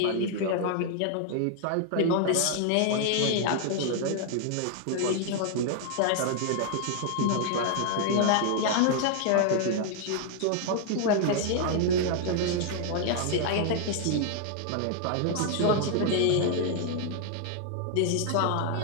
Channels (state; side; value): different; both; correlation 0.00